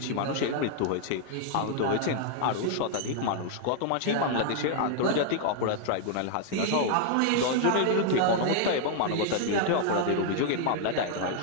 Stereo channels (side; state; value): both; different; correlation 0.00